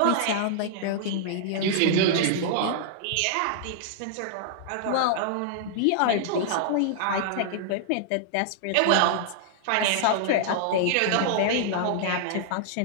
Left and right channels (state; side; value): different; both; correlation -0.01